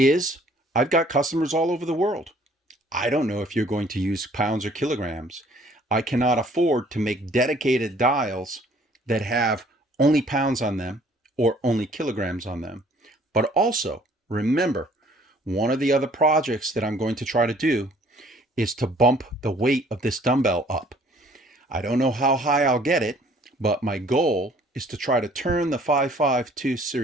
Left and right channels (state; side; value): normal; both; correlation 0.58